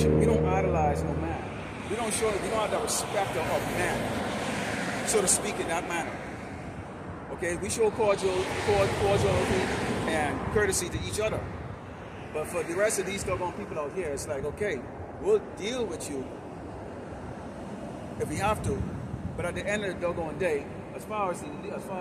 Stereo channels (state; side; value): identical; both; correlation 1.00